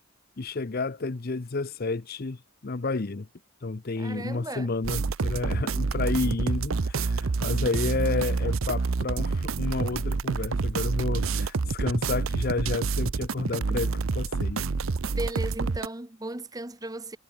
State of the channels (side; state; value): both; normal; correlation 0.55